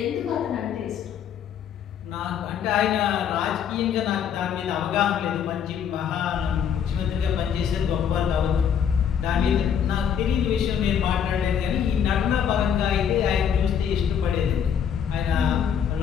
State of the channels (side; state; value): right; quieter; 8.2 dB